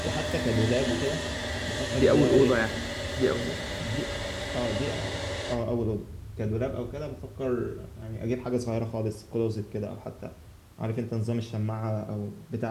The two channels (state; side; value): identical; both; correlation 1.00